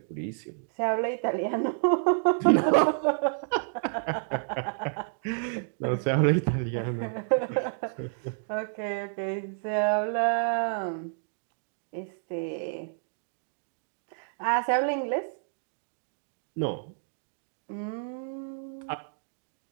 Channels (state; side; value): silent; left; digital silence